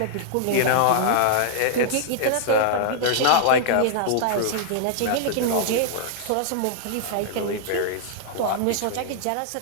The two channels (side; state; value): both; different; correlation -0.01